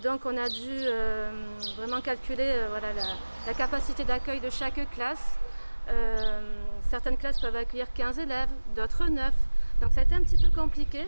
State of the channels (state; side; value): inverted; both; correlation -1.00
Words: Donc on a dû vraiment calculer voilà, la capacité d'accueil de chaque classe. Certaines classes peuvent accueillir 15 élèves, d'autres 9. Donc ça a été un petit peu compliqué